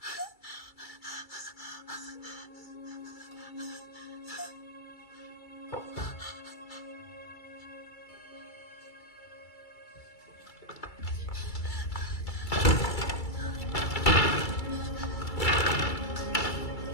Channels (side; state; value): right; late; 2.3 ms